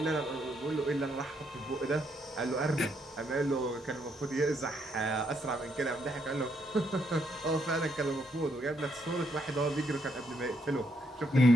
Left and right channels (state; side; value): normal; both; correlation 0.75